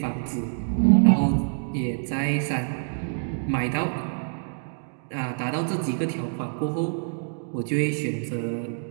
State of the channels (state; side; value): silent; left; 61 dB below the other